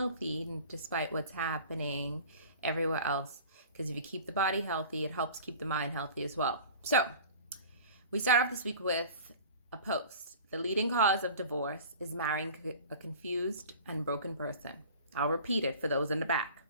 despite what's happening everywhere else. Because if you keep the body healthy, it helps keep the mind healthy as well. So, we start off this week with a post. The leading cause of divorce is marrying a confused and broken person. I'll repeat it for those in the back.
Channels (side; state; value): both; inverted; correlation -0.41